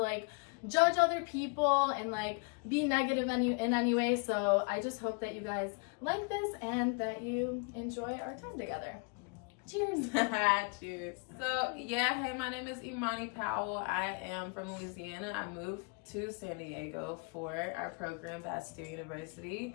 judge other people and like be negative in any way. So I just hope that you guys like this and that you enjoy our time together. Cheers. Cheers. So yeah, hey, my name is Imani Powell. I am from Louisiana. I moved to San Diego for our program, Bastyr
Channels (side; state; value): right; quieter; 34.7 dB